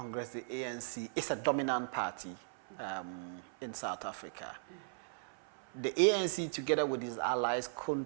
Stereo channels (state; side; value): silent; left; 53 dB below the other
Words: the ANC, is a dominant party in South Africa. The ANC, together with its allies,